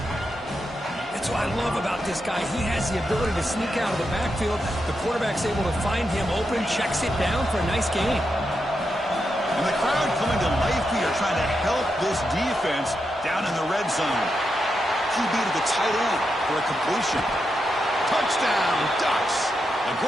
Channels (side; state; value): both; normal; correlation 0.85